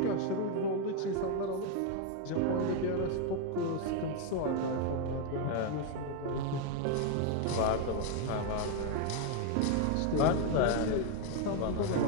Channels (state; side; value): different; both; correlation 0.01